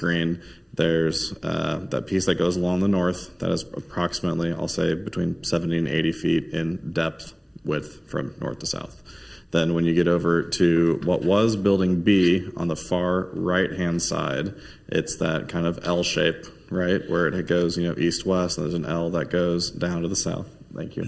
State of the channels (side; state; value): both; identical; correlation 1.00